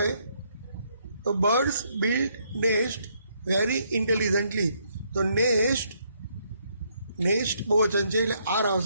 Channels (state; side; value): inverted; both; correlation -0.72